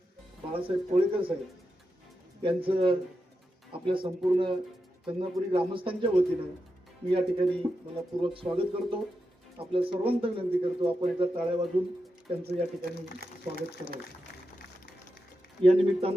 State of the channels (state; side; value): normal; both; correlation 0.88